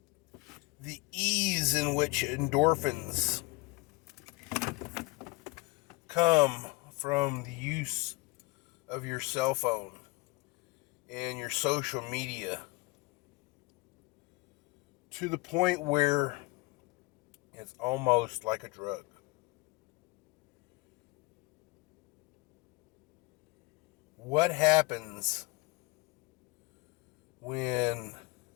the ease in which endorphins come from the use of your cell phone and your social media, to the point where it's almost like a drug. What happens when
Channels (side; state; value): right; quieter; 23.8 dB